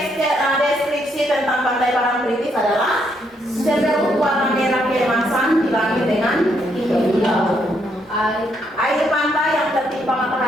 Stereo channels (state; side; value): normal; both; correlation 0.74